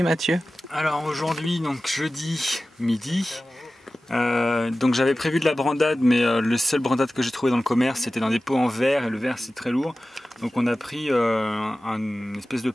Mathieu? Alors aujourd'hui, donc jeudi midi, donc j'avais prévu de la brandade, mais le seul brandade que j'ai trouvé dans le commerce, c'était dans des pots en verre, et le verre c'est très lourd. Donc on a pris une espèce de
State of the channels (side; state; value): both; normal; correlation 0.96